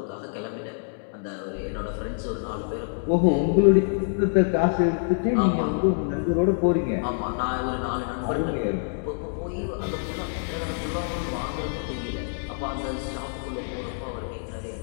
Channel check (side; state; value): right; silent; digital silence